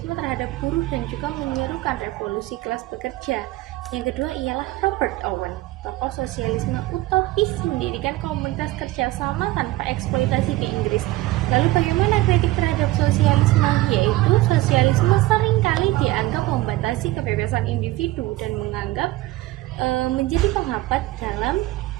terhadap buruh dan juga menyerukan revolusi kelas pekerja. Yang kedua ialah Robert Owen, tokoh sosialisme utopis, mendirikan komunitas kerjasama tanpa eksploitasi ke Inggris. Lalu bagaimana kritik terhadap sosialisme? Yaitu sosialisme seringkali dianggap membatasi kebebasan individu dan menganggap menjadi penghambat dalam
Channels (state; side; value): quieter; left; 17.8 dB